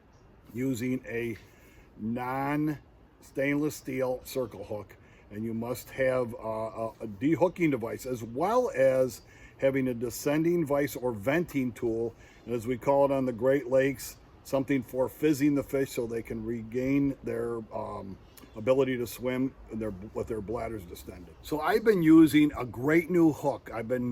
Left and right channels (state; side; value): identical; both; correlation 1.00